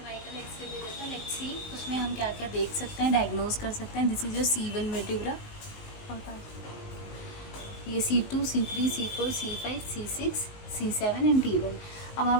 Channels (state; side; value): late; right; 19 ms